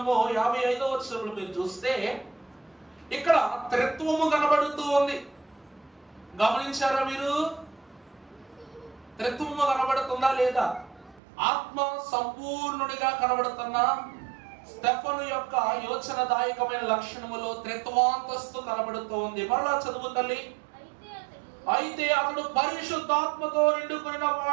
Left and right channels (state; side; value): drops out; left; at 11.2 s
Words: 55వ వచనంలో మీరు చూస్తే ఇక్కడ త్రిత్వము కనబడుతూ ఉంది. గమనించారా మీరు? త్రిత్వము కనబడుతుందా లేదా? ఆత్మ సంపూర్ణుడిగా కనబడుతున్నా స్టెఫను యొక్క యోచనదాయకమైన లక్షణములో త్రిత్వాంతస్తు కనబడుతూ ఉంది. మరలా చదువు తల్లి. అయితే అతడు పరిశుద్ధాత్మతో నిండుకొనిన